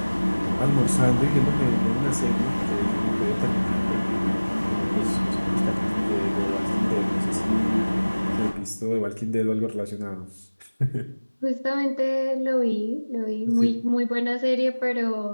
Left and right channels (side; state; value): both; inverted; correlation -1.00